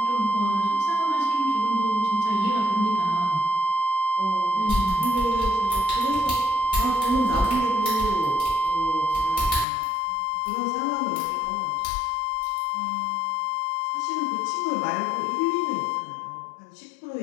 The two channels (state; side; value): drops out; right; at 9.7 s